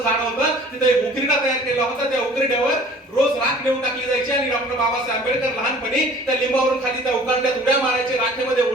झाड होतं, तिथे एक उकिरडा तयार केला होता, त्या उकिरड्यावर रोज राख नेऊन टाकली जायची. आणि डॉक्टर बाबासाहेब आंबेडकर लहानपणी त्या लिंबावरून खाली त्या उकिरड्यात उड्या मारायचे, राखेमध्ये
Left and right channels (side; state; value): both; normal; correlation 0.49